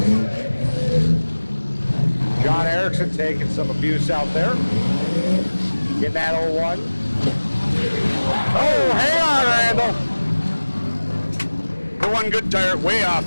John Erickson taking some abuse out there. Getting that 01. Oh, hang on, Randall. For one good tire, way off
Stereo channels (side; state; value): both; inverted; correlation -1.00